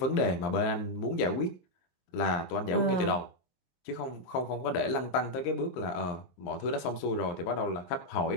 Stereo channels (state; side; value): late; right; 23 ms